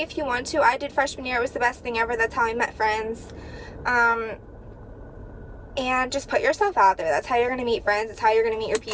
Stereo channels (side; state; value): both; identical; correlation 1.00